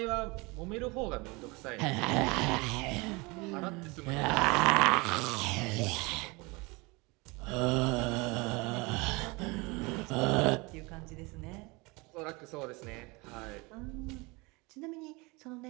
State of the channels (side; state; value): left; quieter; 26.0 dB